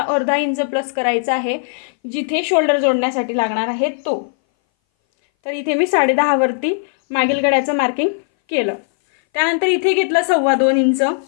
अर्धा इंच प्लस करायचा आहे जिथे शोल्डर जोडण्यासाठी लागणार आहे तो. तर इथे मी 10.5 वरती मागील गळ्याचं मार्किंग केलं. त्यानंतर इथे घेतलं 2.25 इंच.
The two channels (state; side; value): silent; right; 61 dB below the other